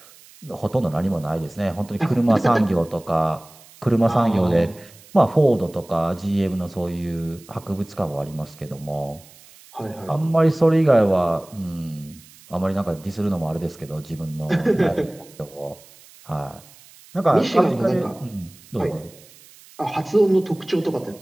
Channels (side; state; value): right; noise; hiss, 24 dB below the sound